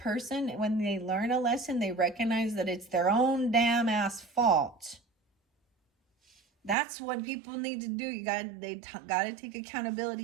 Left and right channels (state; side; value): drops out; left; at 6.8 s